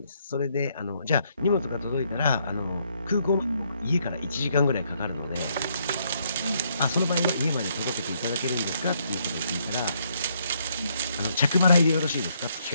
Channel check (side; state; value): both; inverted; correlation -0.72